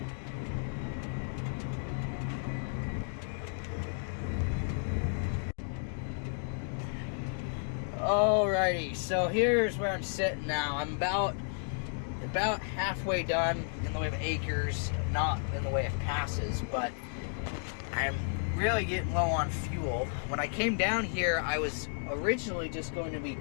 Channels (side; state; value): right; silent; digital silence